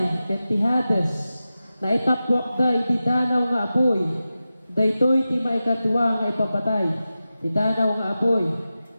ket ti Hades, na itapwak da iti danaw nga apoy, daytoy ti maikatwa nga ipapatay, ti danaw nga apoy.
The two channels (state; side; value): inverted; both; correlation -0.93